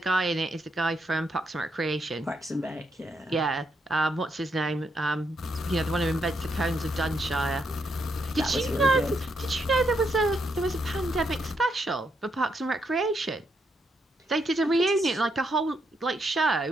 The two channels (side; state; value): both; normal; correlation 0.78